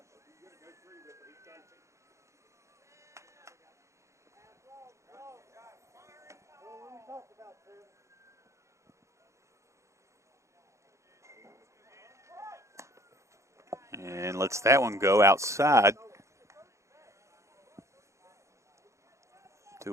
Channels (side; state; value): left; late; 0.14 ms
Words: And lets that one go outside.